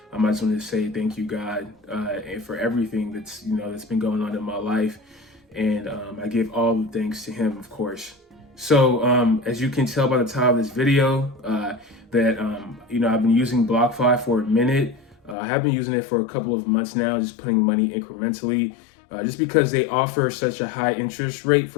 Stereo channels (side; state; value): right; drops out; at 15.4 s